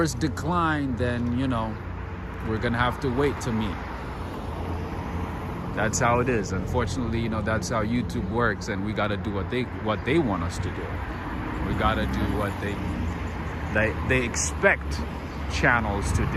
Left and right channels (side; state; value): both; identical; correlation 1.00